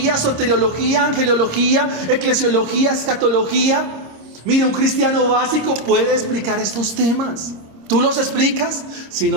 soteriología, angelología, eclesiología, escatología? Mire, un cristiano básico puede explicar estos temas. ¿Tú los explicas? Si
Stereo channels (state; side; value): late; left; 26 ms